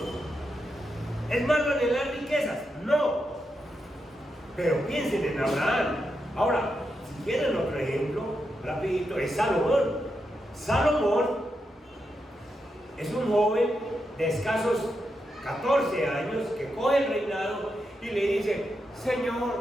¿es malo anhelar riquezas? No. Pero piensen en Abraham. Ahora, si quieren otro ejemplo, rapidito, es Salomón. Salomón es un joven de escasos 14 años que coge el reinado y le dice,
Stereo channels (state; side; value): normal; both; correlation 0.85